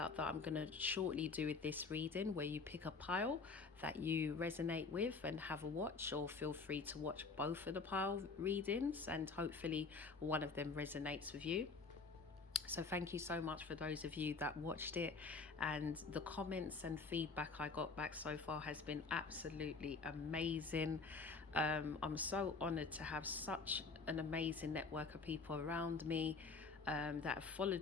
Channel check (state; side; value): quieter; right; 4.4 dB